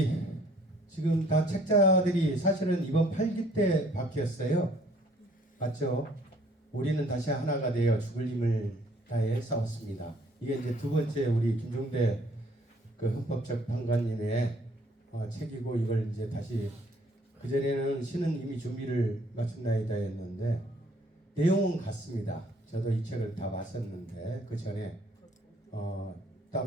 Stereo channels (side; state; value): both; normal; correlation 0.60